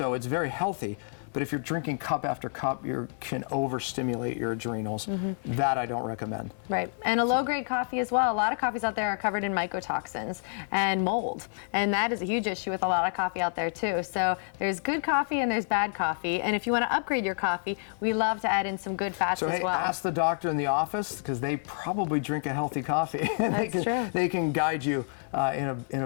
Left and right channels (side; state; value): right; silent; 57 dB below the other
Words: it's very healthy. But if you're drinking cup after cup, you can overstimulate your adrenals. That I don't recommend. Right, and a low-grade coffee as well. A lot of coffees out there are covered in mycotoxins and mold, and that is a huge issue with a lot of coffee out there too. So there's good coffee and there's bad coffee, and if you want to upgrade your coffee, we love to add in some good fats as well. Ask the doctor in the office, because they probably drink a healthy coffee, and they can guide you in